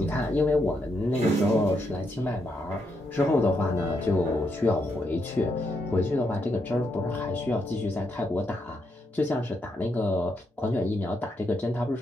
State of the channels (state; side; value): normal; both; correlation 0.79